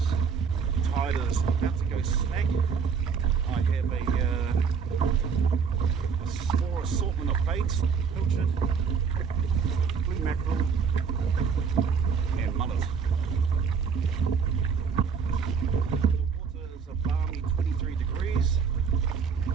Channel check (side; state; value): left; quieter; 6.2 dB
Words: Tide is about to go smack. I have a small assortment of baits, pilchard, blue mackerel and mullet. The water is a balmy 23 degrees.